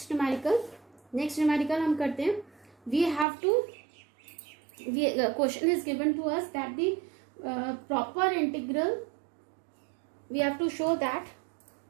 numerical. Next numerical हम करते हैं, we have to, question is given to us that the proper integral, we have to show that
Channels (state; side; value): drops out; left; at 3.2 s